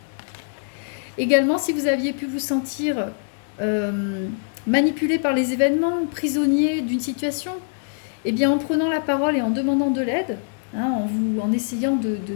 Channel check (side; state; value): right; silent; digital silence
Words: Également, si vous aviez pu vous sentir manipulé par les événements, prisonnier d'une situation, eh bien en prenant la parole et en demandant de l'aide, hein, en essayant